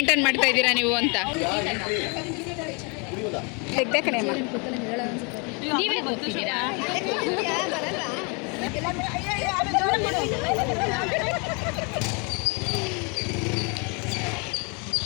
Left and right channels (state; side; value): quieter; right; 33.2 dB